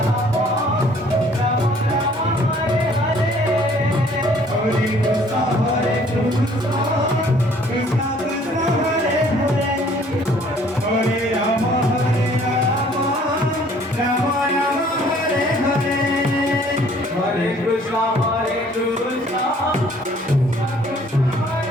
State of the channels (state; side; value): normal; both; correlation 0.58